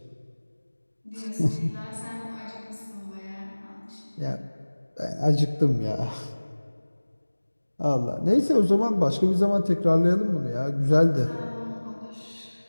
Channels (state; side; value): inverted; both; correlation -1.00